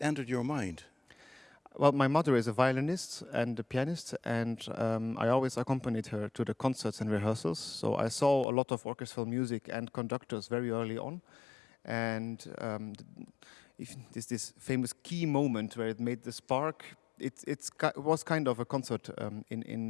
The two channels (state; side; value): drops out; right; at 8.5 s